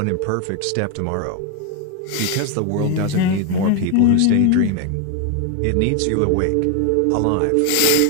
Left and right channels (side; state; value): both; different; correlation 0.01